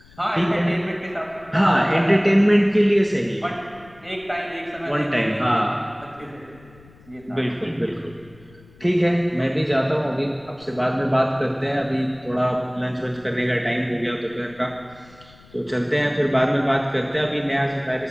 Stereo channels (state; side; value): noise; left; rumble, 25 dB below the sound